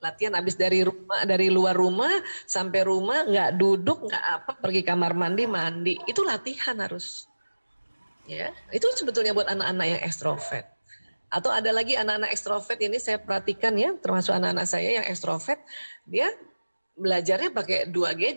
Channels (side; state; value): both; inverted; correlation -1.00